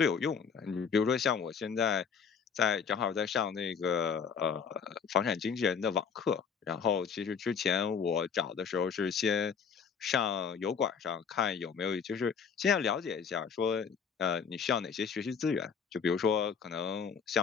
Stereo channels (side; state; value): right; quieter; 6.5 dB